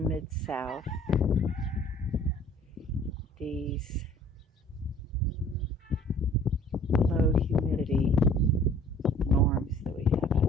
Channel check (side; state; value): both; normal; correlation 0.52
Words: these low humidity norms that we have